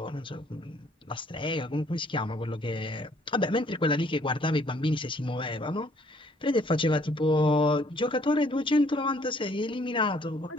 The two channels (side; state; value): both; normal; correlation 0.62